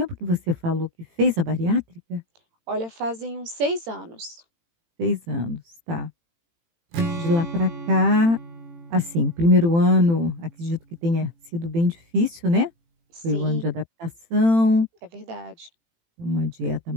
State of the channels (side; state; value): left; late; 18 ms